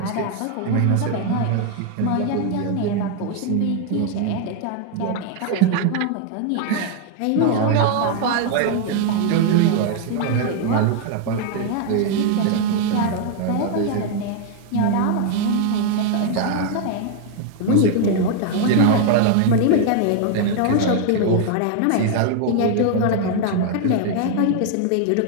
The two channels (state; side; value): different; both; correlation 0.00